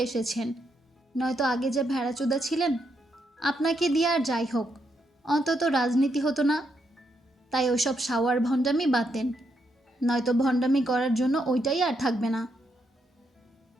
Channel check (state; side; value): normal; both; correlation 0.79